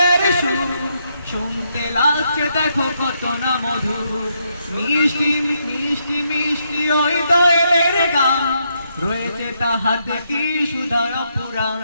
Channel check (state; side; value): inverted; both; correlation -0.77